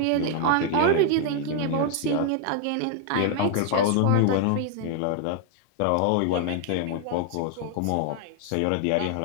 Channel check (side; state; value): both; different; correlation 0.00